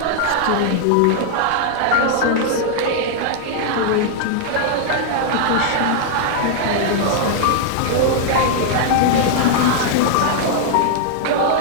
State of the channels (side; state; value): both; different; correlation 0.00